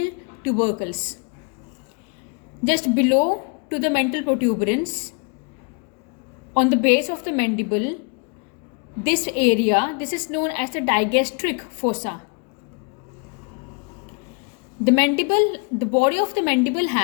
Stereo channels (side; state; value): right; quieter; 34.5 dB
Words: tubercles. Just below to the mental protuberance, on the base of the mandible, this is known as the digastric fossa. The body of the mandible